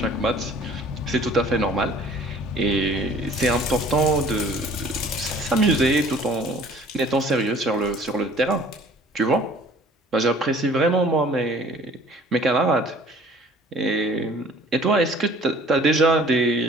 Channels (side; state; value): both; normal; correlation 0.51